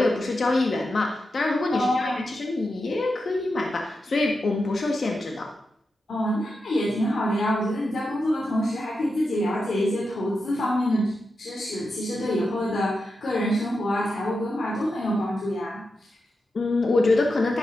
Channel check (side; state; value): both; normal; correlation 0.88